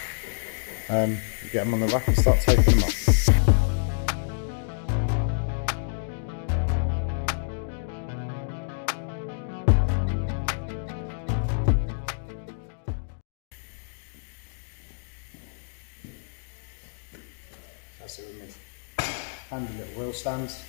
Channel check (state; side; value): silent; right; digital silence